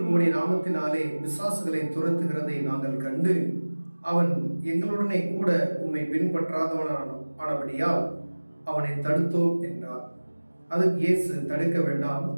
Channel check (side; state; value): both; inverted; correlation -1.00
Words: உம்முடைய நாமத்தினாலே பிசாசுகளை துரத்துகிறதை நாங்கள் கண்டு அவன் எங்களுடனே கூட உம்மை பின்பற்றாதவனானபடியால் அவனை தடுத்தோம் என்றார். அதுக்கு இயேசு, தடுக்க வேண்டாம்,